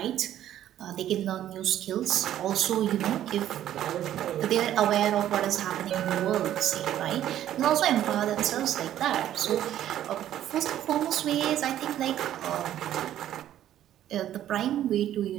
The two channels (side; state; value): left; quieter; 11.8 dB